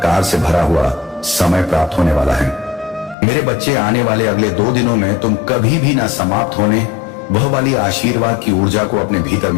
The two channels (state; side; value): drops out; right; at 3.2 s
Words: से भरा हुआ समय प्राप्त होने वाला है। मेरे बच्चे, आने वाले अगले 2 दिनों में तुम कभी भी ना समाप्त होने वह वाली आशीर्वाद की ऊर्जा को अपने भीतर